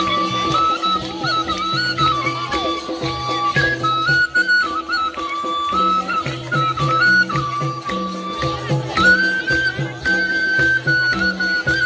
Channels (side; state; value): both; identical; correlation 1.00